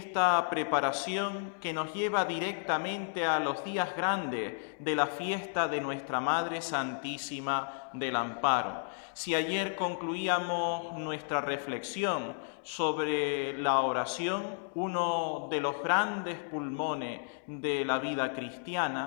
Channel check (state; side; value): silent; right; 56 dB below the other